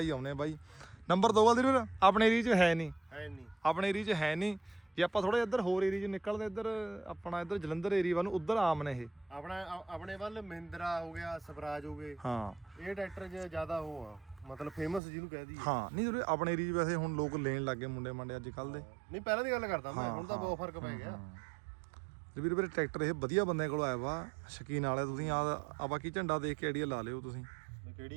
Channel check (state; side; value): drops out; left; at 15.0 s